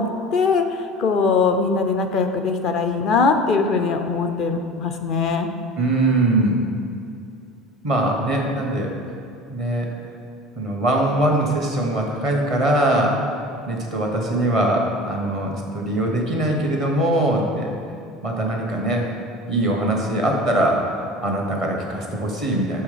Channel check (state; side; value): normal; both; correlation 0.39